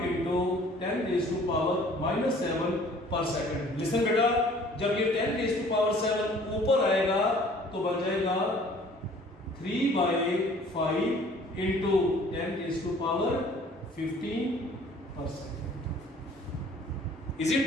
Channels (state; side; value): normal; both; correlation 0.53